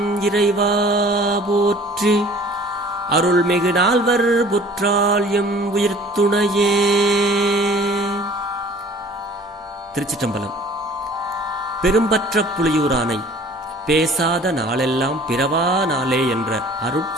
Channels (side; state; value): both; normal; correlation 0.49